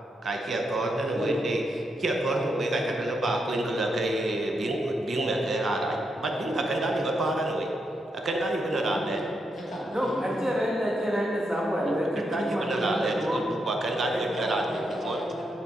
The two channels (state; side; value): normal; both; correlation 0.82